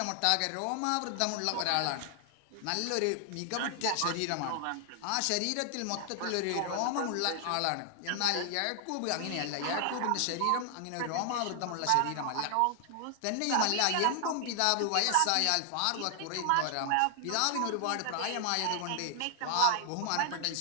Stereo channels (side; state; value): both; different; correlation 0.00